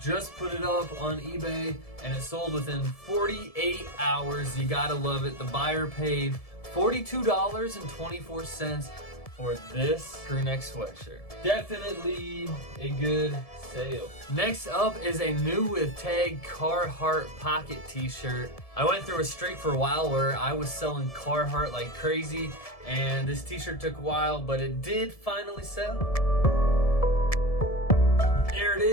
put it up on eBay and it sold within 48 hours. You gotta love it. The buyer paid $42.24 for this crew neck sweatshirt. Definitely a good sale. Next up is a new with tag Carhartt pocket t-shirt. I went through a streak for a while where I was selling Carhartt like crazy, and this t-shirt took a while, but it did finally sell. There it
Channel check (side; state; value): right; late; 1.7 ms